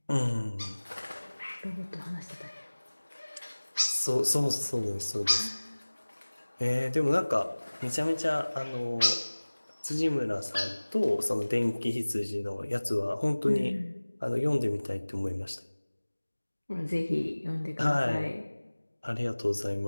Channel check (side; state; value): both; inverted; correlation -1.00